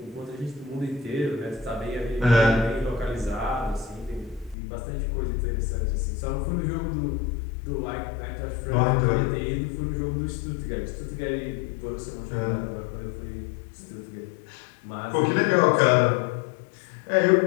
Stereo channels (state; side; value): drops out; right; at 4.5 s